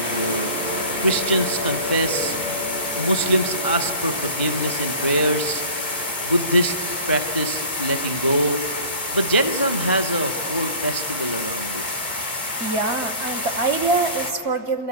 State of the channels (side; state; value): both; inverted; correlation -0.41